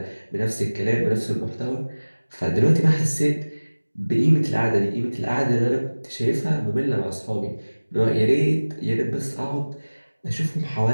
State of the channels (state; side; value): inverted; both; correlation -1.00